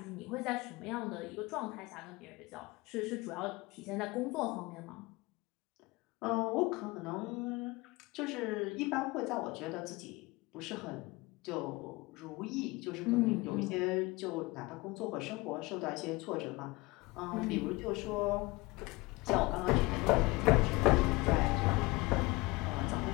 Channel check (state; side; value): quieter; right; 23.2 dB